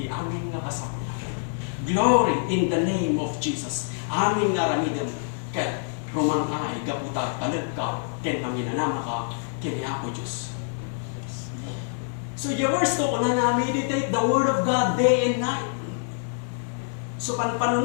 amin nga kasakulang. Glory in the name of Jesus. Amin nga ramidam, ket rumangay, gaputa talag ka, ken manginanama ka, ken ako Diyos. So yung verse to, una na meditate the Word of God day and night. So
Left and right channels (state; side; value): silent; right; 57 dB below the other